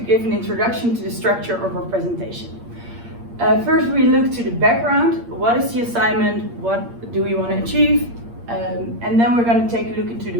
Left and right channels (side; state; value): left; late; 8.6 ms